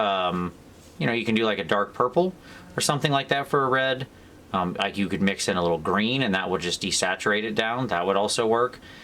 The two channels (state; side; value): identical; both; correlation 1.00